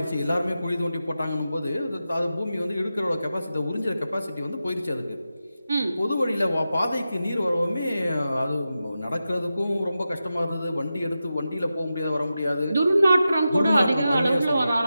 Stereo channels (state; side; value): inverted; both; correlation -0.91